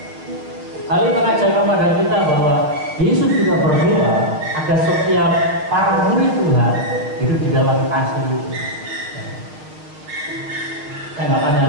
Hal ini mengajarkan pada kita bahwa Yesus juga berdoa agar setiap para murid Tuhan hidup di dalam kasih. Saya nggak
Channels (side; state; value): left; late; 6.6 ms